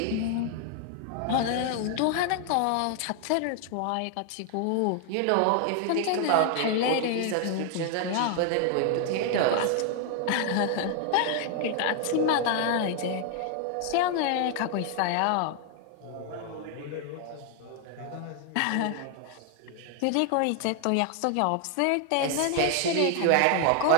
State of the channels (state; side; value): different; both; correlation 0.00